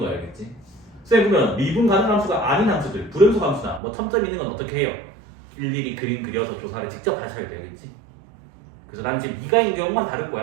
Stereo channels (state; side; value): drops out; left; at 3.8 s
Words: 알겠지? 선생님 그러면 미분 가능한 함수가 아닌 함수들, 불연속 함수나 뭐 첨점 있는 건 어떻게 해요? 일일이 그림 그려서 조사를 직접 하셔야 돼, 알겠지? 그래서 나는 지금 미가인 경우만 다룰